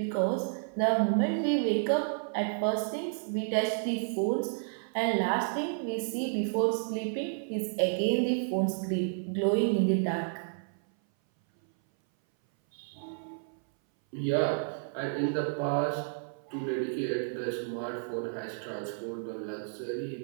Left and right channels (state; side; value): silent; left; 57 dB below the other